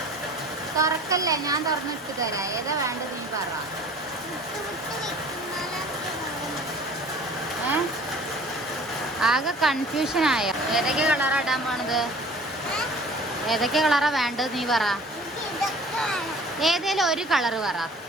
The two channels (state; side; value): normal; both; correlation 0.47